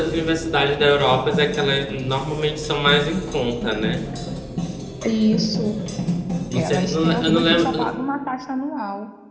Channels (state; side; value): identical; both; correlation 1.00